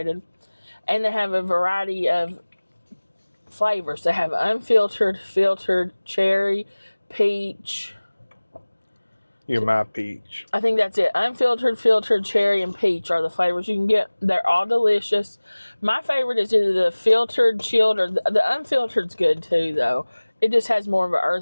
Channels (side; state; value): both; inverted; correlation -1.00